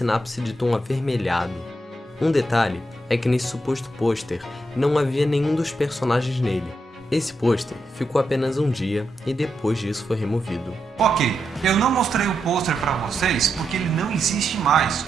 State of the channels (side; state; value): both; normal; correlation 0.84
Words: de tom avermelhado. Um detalhe é que nesse suposto pôster não havia nenhum dos personagens nele. Esse pôster ficou apenas um dia e depois disso foi removido. Ok, eu não mostrei o pôster para vocês porque ele não existe mais.